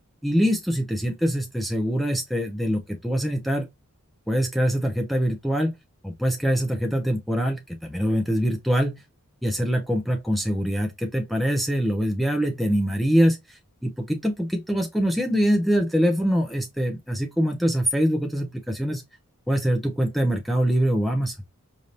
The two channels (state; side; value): normal; both; correlation 0.93